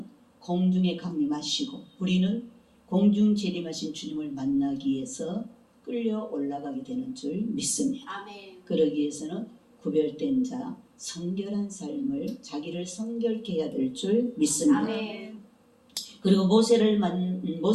공중에 강림하시고 우리는 공중 재림하신 주님을 만나기 위해서 끌려 올라가게 되는 줄 믿습니다. 아멘. 그러기 위해서는 구별된 자, 성결한 삶을 자기를 성결케 해야 될 줄 믿습니다. 아멘. 그리고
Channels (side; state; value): both; identical; correlation 1.00